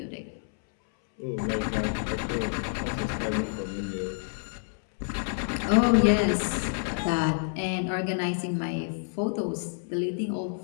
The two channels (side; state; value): right; silent; 59 dB below the other